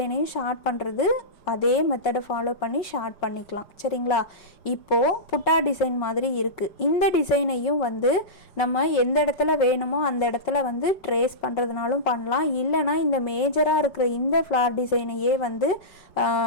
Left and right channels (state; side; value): late; right; 5.4 ms